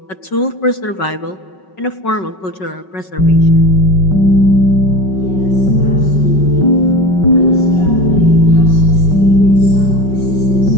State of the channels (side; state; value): right; late; 5.4 ms